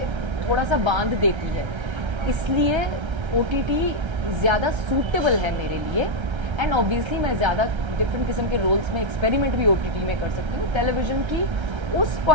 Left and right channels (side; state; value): left; late; 1.3 ms